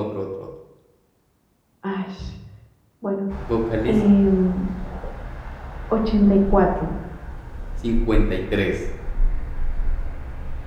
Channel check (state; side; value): identical; both; correlation 1.00